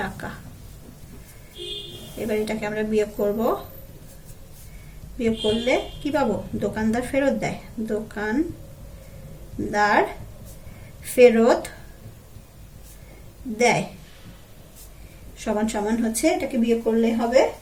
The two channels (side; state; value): both; identical; correlation 1.00